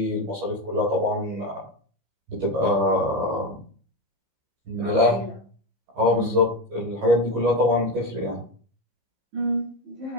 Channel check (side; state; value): left; late; 15 ms